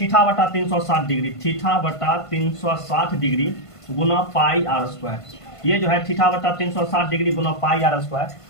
डिग्री। θ/360 डिग्री गुना पाई आर स्क्वायर। ये जो है θ/360 डिग्री गुना पाई आर स्क्वायर,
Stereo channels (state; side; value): late; right; 1.5 ms